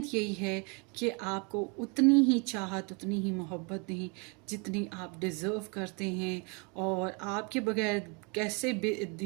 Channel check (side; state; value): left; quieter; 32.6 dB